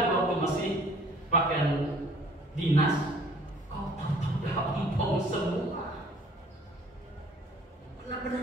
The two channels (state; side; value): normal; both; correlation 0.55